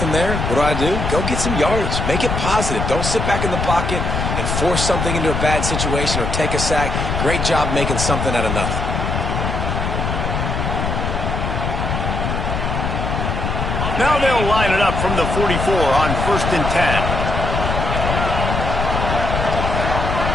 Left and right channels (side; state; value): left; noise; rumble, 2 dB below the sound